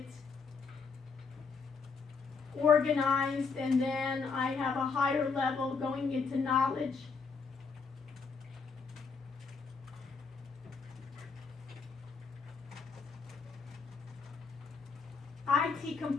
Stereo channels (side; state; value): right; quieter; 5.0 dB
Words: organized, and then I have a higher level going into knowledge. IT